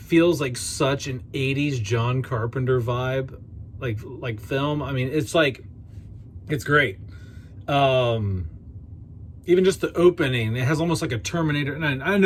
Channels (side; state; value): both; identical; correlation 1.00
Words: feels like such an 80s John Carpenter vibe, like film. I mean, it's like, it's great. Even just the opening, it has almost like a Terminator. And I